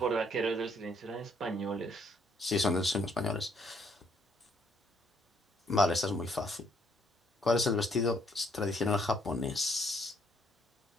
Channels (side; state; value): both; normal; correlation 0.68